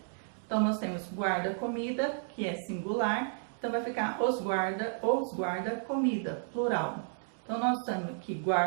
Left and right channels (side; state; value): left; silent; digital silence